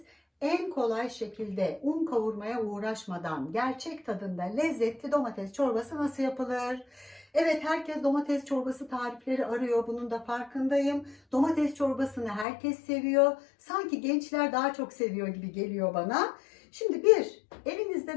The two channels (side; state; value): right; drops out; at 12.5 s